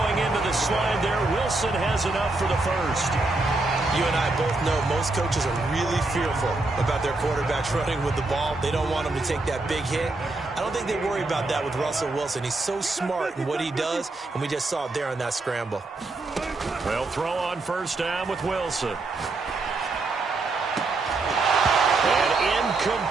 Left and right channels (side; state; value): left; quieter; 3.2 dB